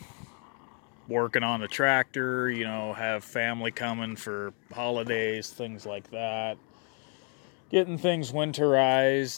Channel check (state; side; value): quieter; right; 39.4 dB